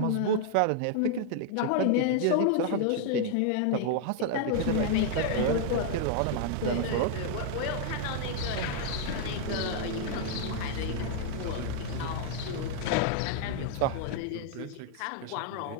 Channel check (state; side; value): different; both; correlation 0.00